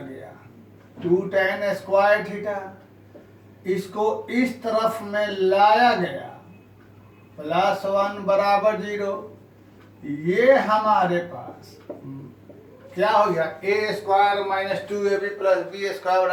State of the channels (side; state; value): both; identical; correlation 1.00